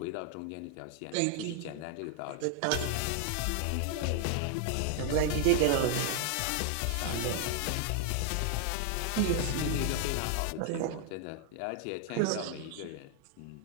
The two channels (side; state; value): both; different; correlation 0.00